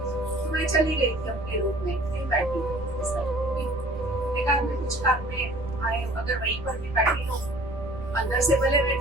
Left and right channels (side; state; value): right; noise; rumble, 14 dB below the sound